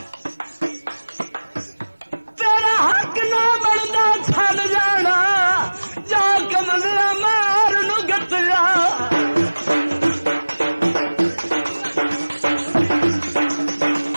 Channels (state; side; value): inverted; both; correlation -1.00